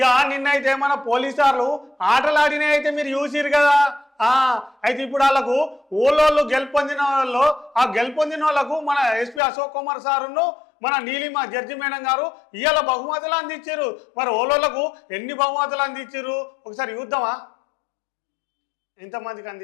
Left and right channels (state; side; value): drops out; right; at 9.4 s